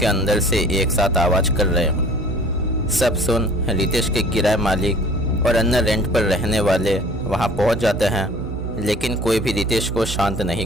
अंदर से एक साथ आवाज़ कर रहे हों। सब सुन रितेश के किराए मालिक और अन्य रेंट पर रहने वाले वहाँ पहुँच जाते हैं, लेकिन कोई भी रितेश को शांत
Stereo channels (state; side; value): normal; both; correlation 0.48